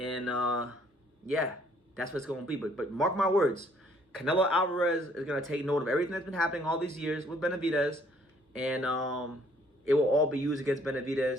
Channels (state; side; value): normal; both; correlation 0.62